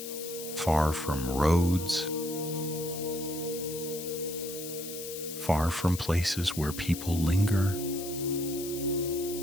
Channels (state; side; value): noise; left; hiss, 9 dB below the sound